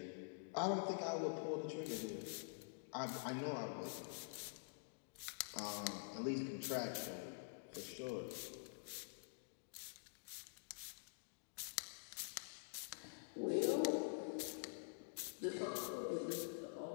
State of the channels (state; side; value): silent; right; digital silence